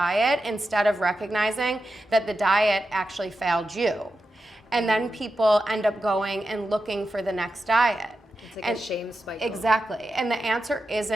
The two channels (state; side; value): normal; both; correlation 0.90